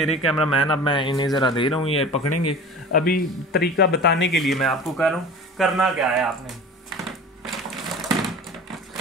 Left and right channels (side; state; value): both; normal; correlation 0.38